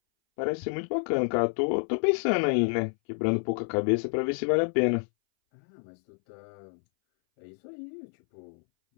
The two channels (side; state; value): right; silent; 59 dB below the other